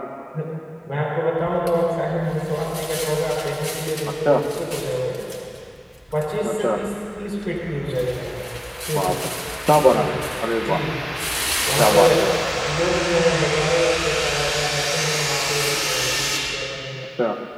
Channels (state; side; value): identical; both; correlation 1.00